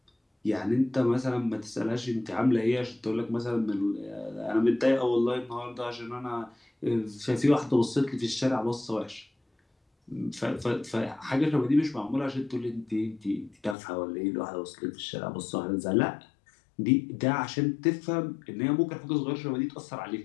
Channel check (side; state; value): right; drops out; at 13.8 s